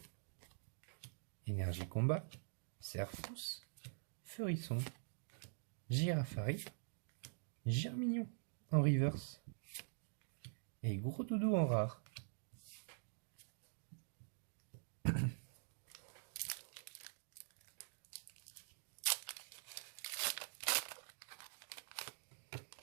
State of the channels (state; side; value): silent; left; digital silence